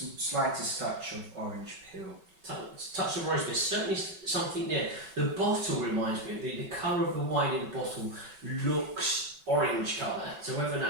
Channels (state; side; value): late; left; 5.3 ms